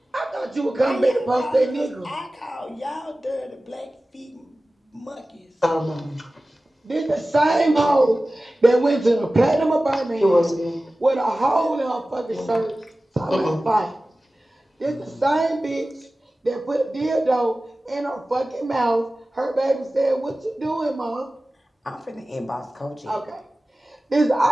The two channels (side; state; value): both; normal; correlation 0.96